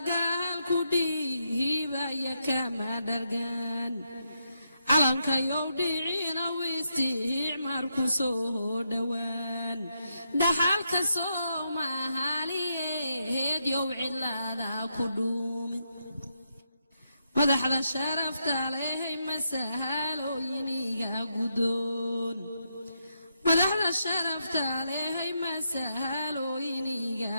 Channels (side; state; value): both; inverted; correlation -0.81